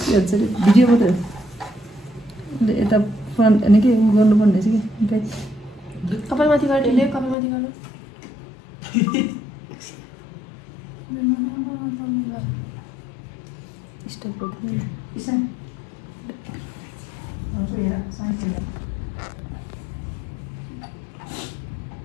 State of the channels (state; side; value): drops out; right; at 7.4 s